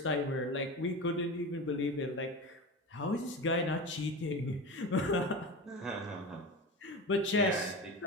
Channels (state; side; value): normal; both; correlation 0.26